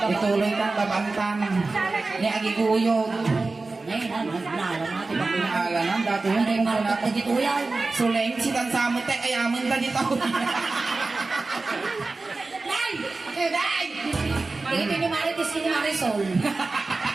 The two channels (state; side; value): quieter; left; 3.6 dB